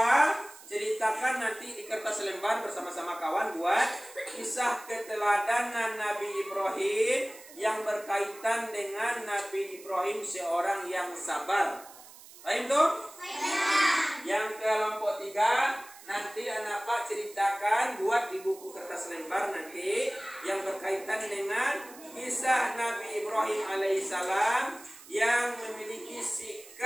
ceritakan nanti di kertas lembar bersama-sama kawan buat kisah keteladanan Nabi Ibrahim yang berkaitan dengan Nabi Ibrahim seorang yang sabar. Paham tuh? Yang kelompok 3 nanti anak Pak ceritakan buat di buku kertas lembar nanti yang berkaitan dengan kisah Nabi Ibrahim alaihissalam yang memiliki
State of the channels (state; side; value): noise; right; hiss, 19 dB below the sound